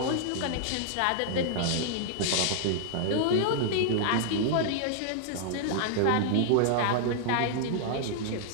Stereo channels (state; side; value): different; both; correlation -0.01